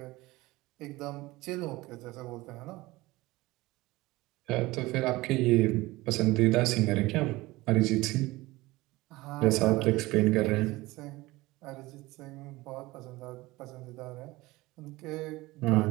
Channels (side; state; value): left; quieter; 20.0 dB